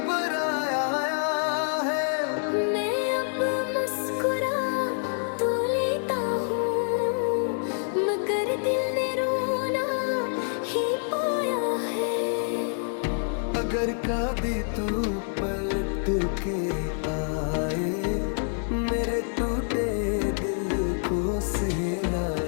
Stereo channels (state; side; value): silent; right; digital silence